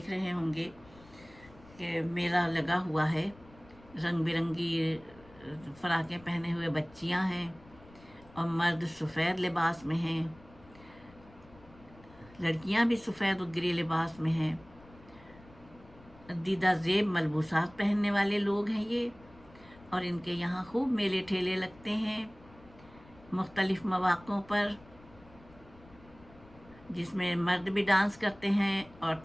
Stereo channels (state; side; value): noise; left; rumble, 23 dB below the sound